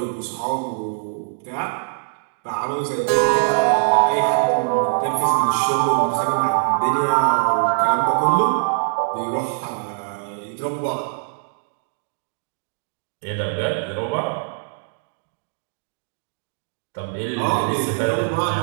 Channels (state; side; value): silent; left; digital silence